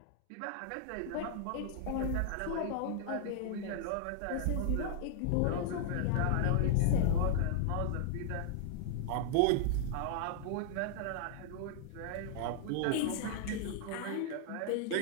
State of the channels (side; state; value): both; different; correlation -0.01